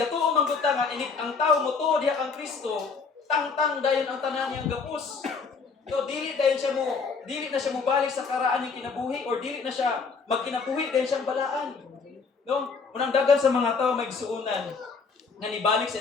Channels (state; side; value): quieter; right; 5.0 dB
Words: man gud ta nga init ang tao mo tuod diha kang Kristo, tangtang dayon ang tanan niyang gapos. So dili na siya mo balik sa karaan yung kinabuhi or dili na siya magkinabuhi dayon siyang balaan. No? Unang dagan sa mga tao may gisuunan nga nibalik sa